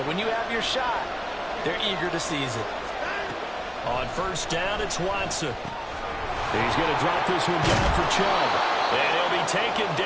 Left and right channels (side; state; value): both; identical; correlation 1.00